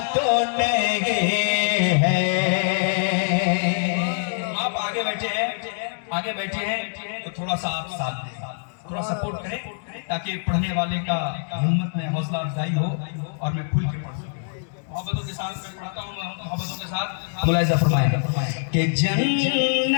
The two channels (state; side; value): silent; right; digital silence